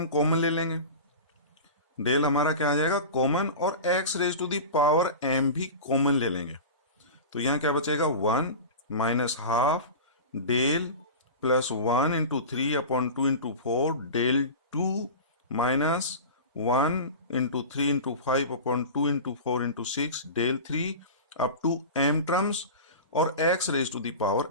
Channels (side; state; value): both; inverted; correlation -0.31